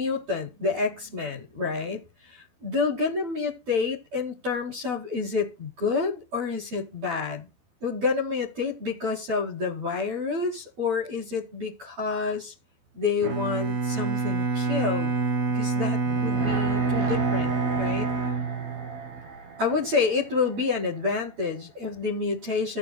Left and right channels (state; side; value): late; left; 12 ms